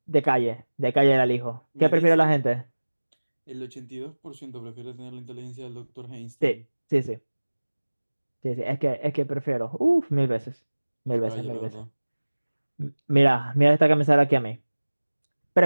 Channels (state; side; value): inverted; both; correlation -1.00